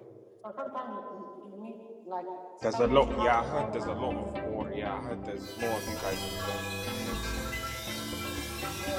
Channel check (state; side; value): identical; both; correlation 1.00